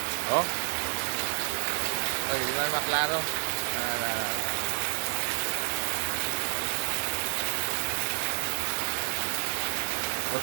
Oh. Oh, di man maklaro.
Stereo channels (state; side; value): silent; left; 58 dB below the other